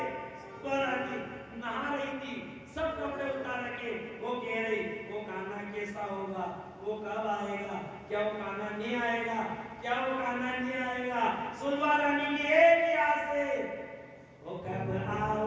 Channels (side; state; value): both; identical; correlation 1.00